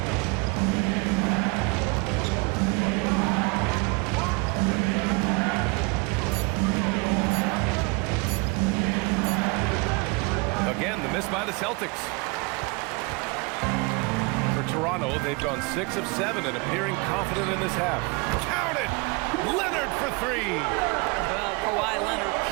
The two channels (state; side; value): quieter; left; 28.3 dB